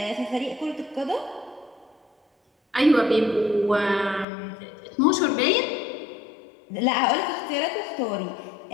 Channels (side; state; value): right; drops out; at 4.2 s